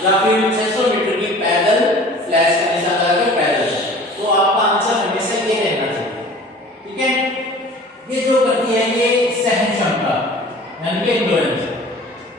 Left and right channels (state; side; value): normal; both; correlation 0.45